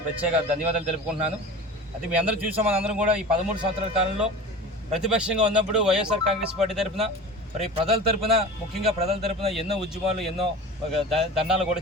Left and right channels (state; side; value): normal; both; correlation 0.35